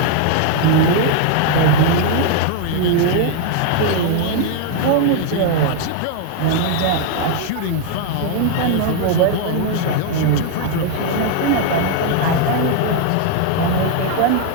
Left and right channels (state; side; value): different; both; correlation 0.00